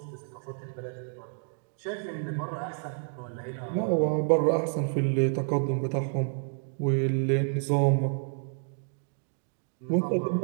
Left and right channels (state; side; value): silent; left; 57 dB below the other